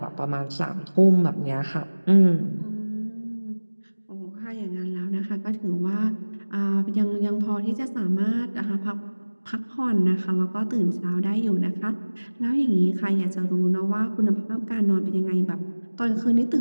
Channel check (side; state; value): both; inverted; correlation -1.00